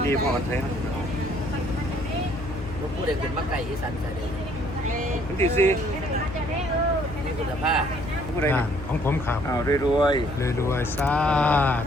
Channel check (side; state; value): left; noise; hum, 11 dB below the sound